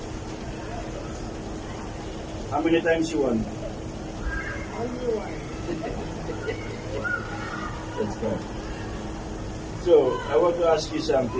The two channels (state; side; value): identical; both; correlation 1.00